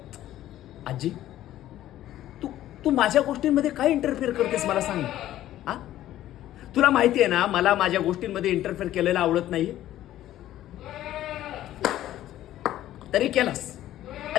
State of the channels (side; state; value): right; quieter; 13.5 dB